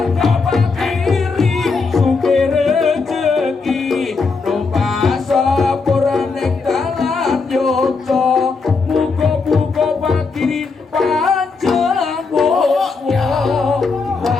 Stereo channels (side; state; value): right; quieter; 4.5 dB